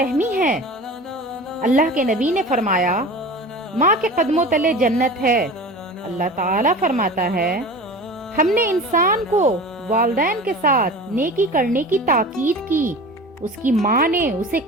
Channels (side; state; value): both; normal; correlation 0.35